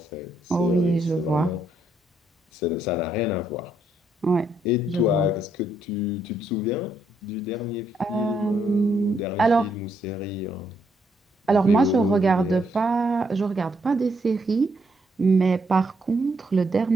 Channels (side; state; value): both; normal; correlation 0.74